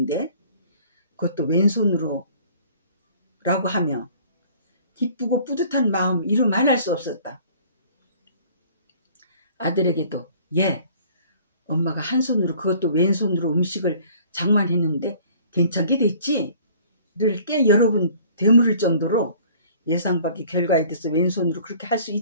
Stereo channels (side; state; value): both; inverted; correlation -0.53